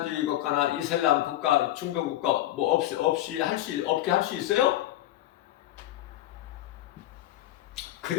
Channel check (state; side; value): quieter; right; 14.2 dB